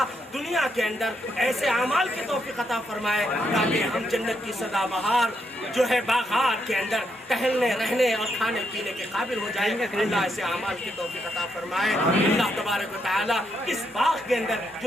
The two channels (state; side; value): normal; both; correlation 0.78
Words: दुनिया के अंदर ऐसे अमाल की तौफीक अता फरमाए ताकि हम जन्नत की सदाबहार जो है बागात के अंदर टहलने रहने और खाने पीने के काबिल हो जाएंगे। अल्लाह ऐसे अमाल की तौफीक अता फरमाए। अल्लाह तबारक व तआला इस बाग के अंदर